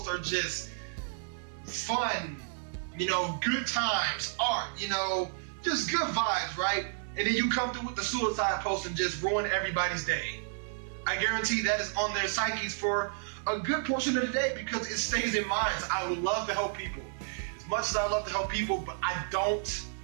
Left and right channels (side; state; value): left; silent; digital silence